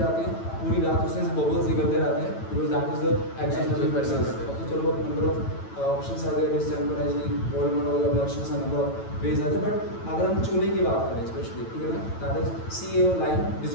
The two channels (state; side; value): late; right; 9.1 ms